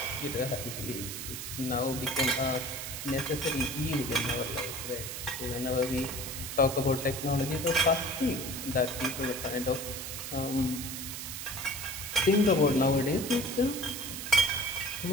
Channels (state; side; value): noise; right; hiss, 7 dB below the sound